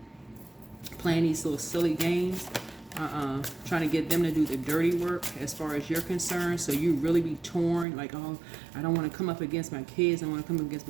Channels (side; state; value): left; drops out; at 7.9 s